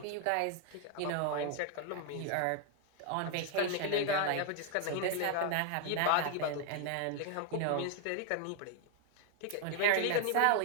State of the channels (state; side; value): different; both; correlation 0.01